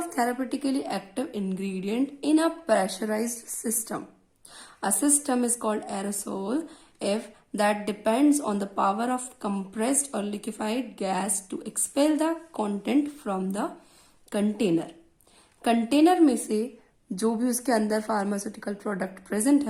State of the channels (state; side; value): identical; both; correlation 1.00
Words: therapeutically active ingredient in a pressurised system. A system is called aerosol if that depends on the power of compressed or liquefied gas to expel the content from the container. Container में से जो भी उसके अंदर pharmaceutical product present